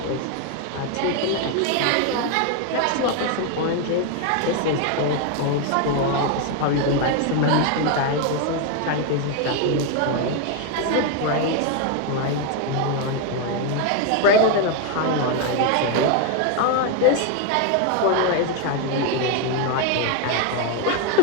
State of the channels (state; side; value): different; both; correlation 0.01